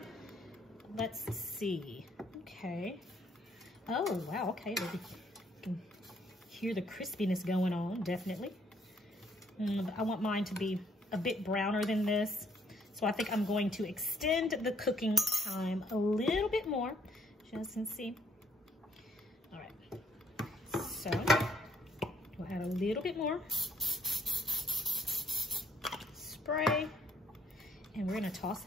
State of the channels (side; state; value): both; normal; correlation 0.66